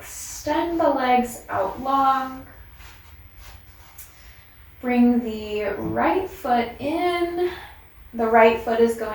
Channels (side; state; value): both; identical; correlation 1.00